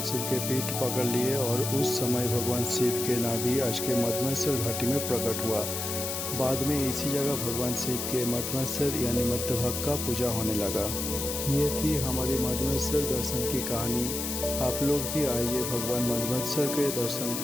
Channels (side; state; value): left; noise; hiss, 3 dB below the sound